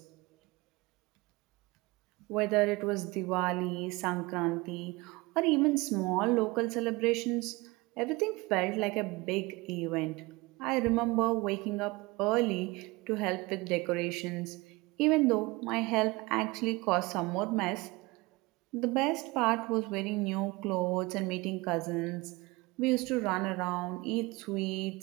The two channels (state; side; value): quieter; left; 23.3 dB